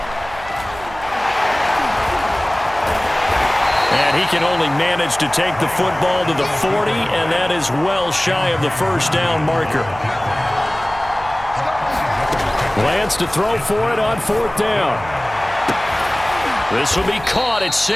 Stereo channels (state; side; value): noise; right; hum, 17 dB below the sound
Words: And he can only manage to take the football to the 40, and that is well shy of the first down marker. Lance to throw for it on 4th down. This will be caught. It's